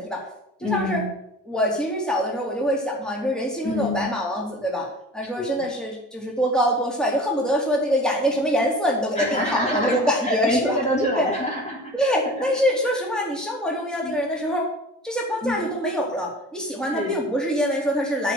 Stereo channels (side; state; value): both; normal; correlation 0.41